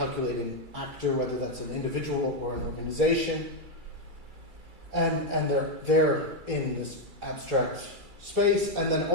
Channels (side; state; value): left; late; 2.3 ms